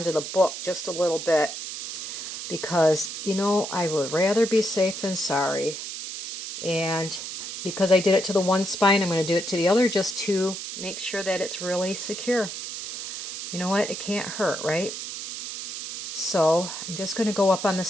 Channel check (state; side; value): noise; right; hiss, 7 dB below the sound